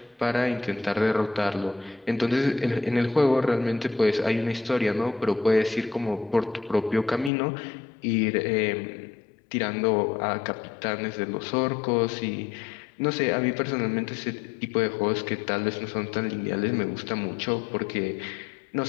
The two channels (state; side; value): drops out; right; at 7.3 s